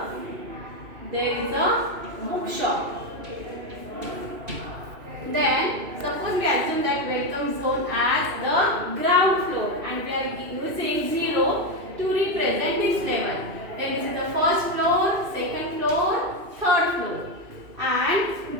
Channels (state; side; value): late; left; 2.5 ms